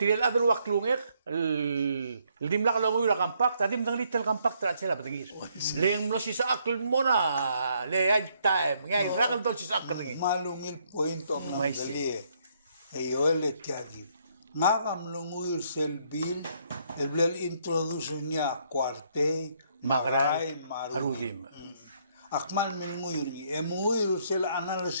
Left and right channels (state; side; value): inverted; both; correlation -0.71